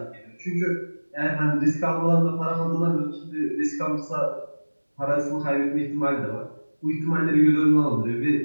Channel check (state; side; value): inverted; both; correlation -1.00